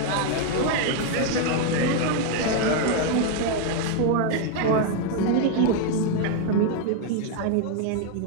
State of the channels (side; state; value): both; different; correlation 0.00